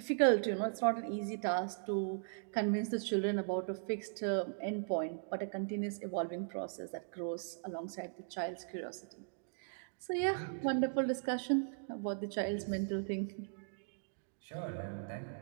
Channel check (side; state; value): left; silent; digital silence